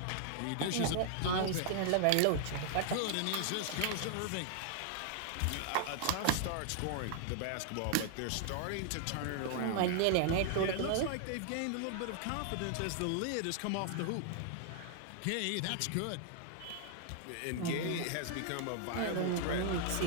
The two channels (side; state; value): both; different; correlation 0.00